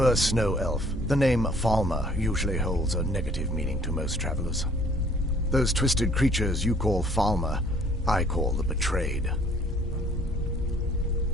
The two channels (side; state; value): both; normal; correlation 0.58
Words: Snow Elf. The name Falmer usually holds a negative meaning to most travelers. Those twisted creatures you call Falmer, I call the Betrayed.